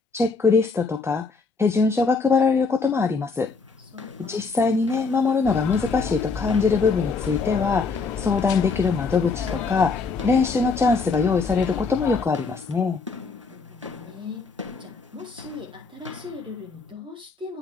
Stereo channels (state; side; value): quieter; right; 4.5 dB